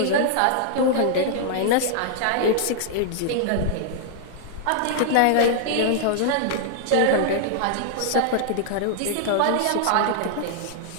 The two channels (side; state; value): both; different; correlation 0.00